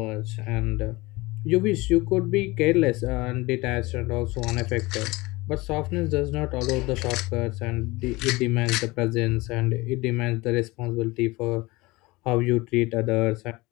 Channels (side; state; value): right; quieter; 22.1 dB